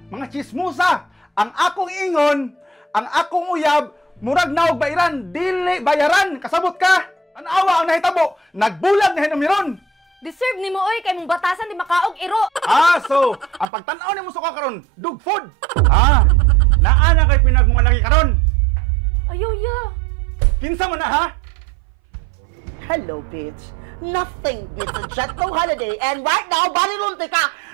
mga chismusa. Ang akong ingon, ang akong uyab, murag naog bairan, dili bayaran. Kasabot ka. Tanawa ang nahitabo. Nagbulag na hinumiron. Deserve ni mo oy kay mong batasan di makaog iro. So, ang pagtanaw ni mo suka karon, dog food. Naa na kay pinagmumalaki karon. Ayaw ya. Kinsa man na ha? Hello, bitch. Nothing beats a Jetlo holiday, and right now, balilunti ka!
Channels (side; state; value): left; drops out; at 13.7 s